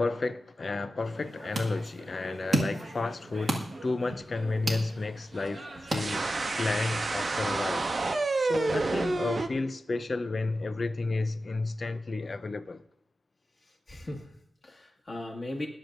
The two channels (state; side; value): normal; both; correlation 0.92